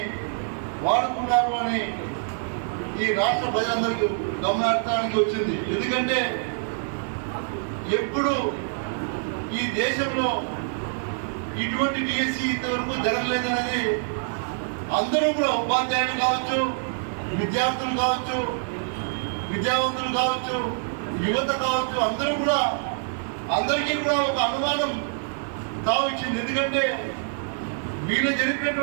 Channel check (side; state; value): left; silent; digital silence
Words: వాడుకున్నారు అని ఈ రాష్ట్ర ప్రజలందరికీ గమనార్థానికి వచ్చింది. ఎందుకంటే ఎప్పుడు ఈ దేశంలో ఇటువంటి డిఎస్సి ఇంతవరకు జరగలేదనేది అందరూ కూడా, ఉపాధ్యాయులు కావచ్చు, విద్యార్థులు కావచ్చు, విద్యావంతులు కావచ్చు, యువత కావచ్చు, అందరికీ కూడా ఒక అనుమానం తావిచ్చింది. ఎందుకంటే వీళ్ళు